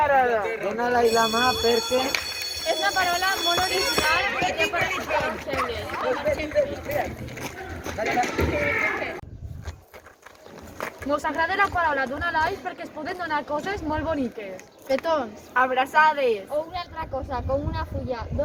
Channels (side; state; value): both; identical; correlation 1.00